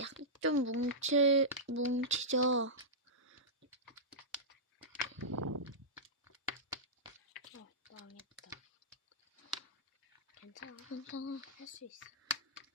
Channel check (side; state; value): both; normal; correlation -0.14